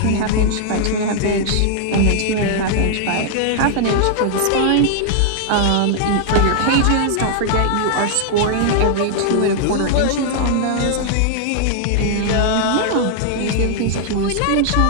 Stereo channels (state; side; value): different; both; correlation -0.01